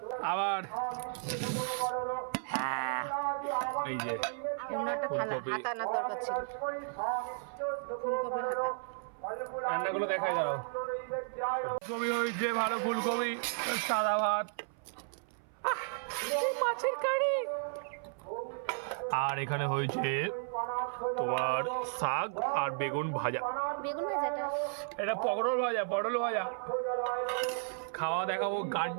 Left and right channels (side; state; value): left; silent; 55 dB below the other